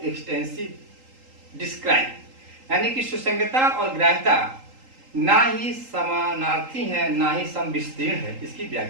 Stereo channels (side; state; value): left; late; 3.8 ms